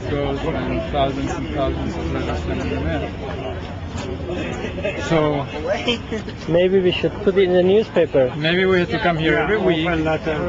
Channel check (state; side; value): identical; both; correlation 1.00